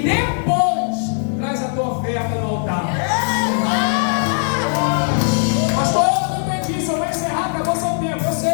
depois traz a tua oferta no altar. Pastor, eu não entendi isso. Eu vou encerrar, acabou seu tempo. Eu sei,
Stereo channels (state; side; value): silent; right; 59 dB below the other